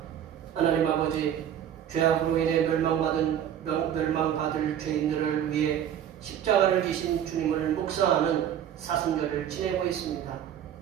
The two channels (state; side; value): quieter; left; 10.0 dB